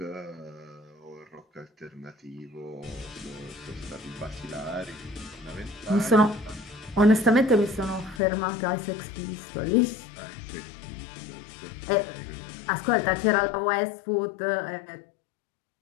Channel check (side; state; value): right; drops out; at 8.2 s